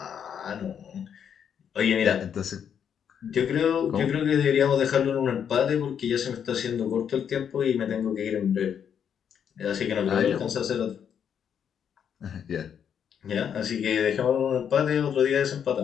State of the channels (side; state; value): right; quieter; 8.2 dB